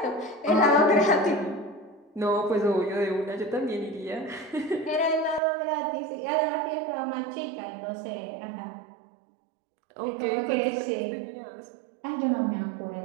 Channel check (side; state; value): left; drops out; at 5.4 s